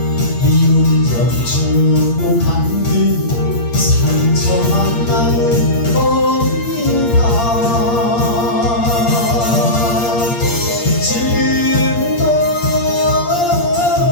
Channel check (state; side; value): late; right; 8.6 ms